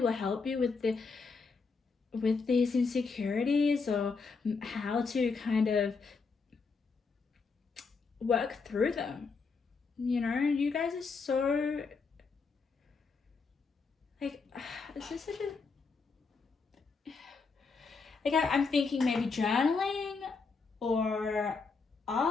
help you with these insecurities, or how to kind of work through them. You know, you guys are so like, it's just such a, like I'm thinking maybe journaling or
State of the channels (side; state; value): right; quieter; 4.7 dB